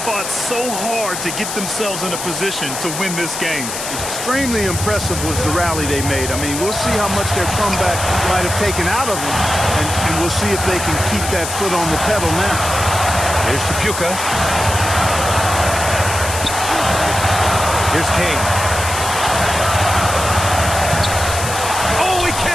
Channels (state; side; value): noise; left; hiss, 6 dB below the sound